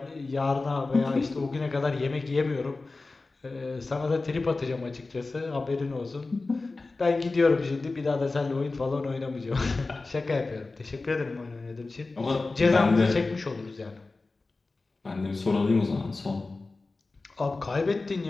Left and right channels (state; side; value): quieter; right; 3.5 dB